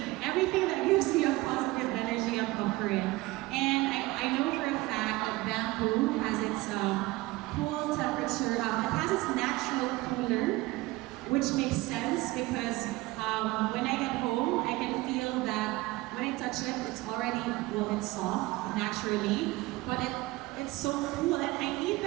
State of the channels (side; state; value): left; quieter; 20.2 dB